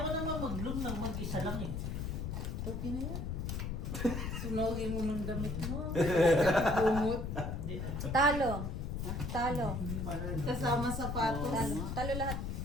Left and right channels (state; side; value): noise; left; rumble, 3 dB below the sound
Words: ko naman mag-bloom ng mag-isa lang eh. Okay na yan. Sunogin mo ng damit mo. Bumot. Di- Talo. Talo. Kasama sapatos. Talo. Talo lahat.